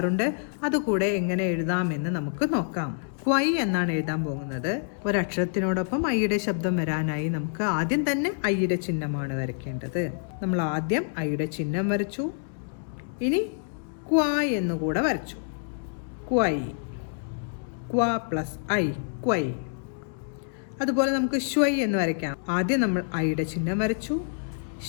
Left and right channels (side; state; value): right; silent; digital silence